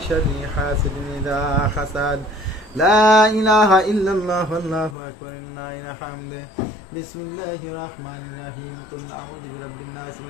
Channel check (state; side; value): drops out; right; at 5.0 s